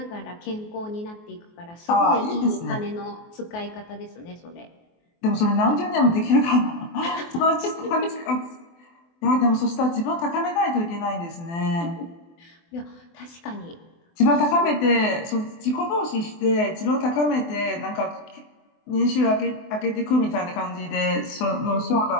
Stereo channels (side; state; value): right; late; 24 ms